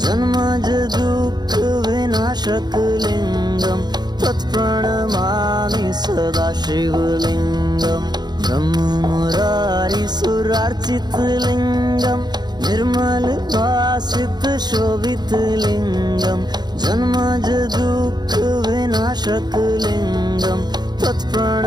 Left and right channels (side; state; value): left; late; 0.20 ms